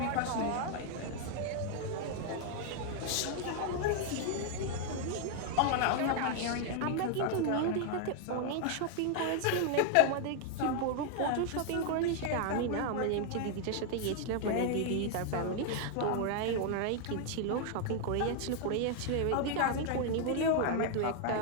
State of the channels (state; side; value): different; both; correlation 0.00